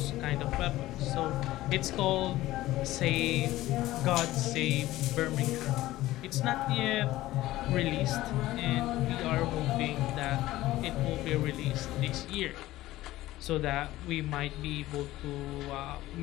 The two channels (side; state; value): right; quieter; 16.3 dB